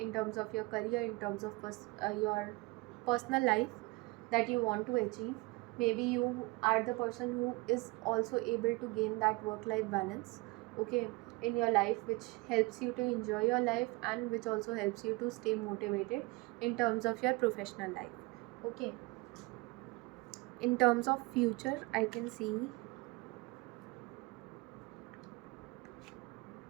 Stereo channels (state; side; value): quieter; left; 24.5 dB